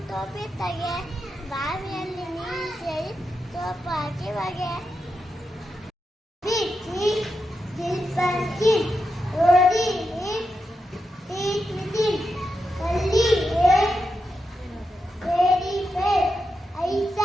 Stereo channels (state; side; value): normal; both; correlation 0.87